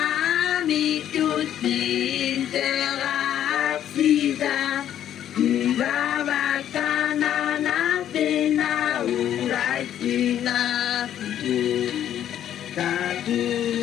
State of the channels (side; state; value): right; quieter; 10.7 dB